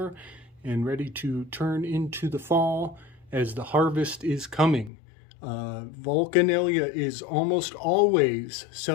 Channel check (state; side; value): drops out; right; at 4.9 s